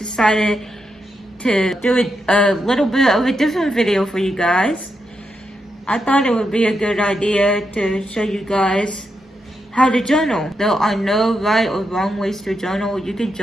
to do a little bit of a different video for you guys. I thought it would be a good idea to show you guys how to journal. There are no right or wrong ways to journal. You can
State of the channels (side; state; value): both; normal; correlation 0.84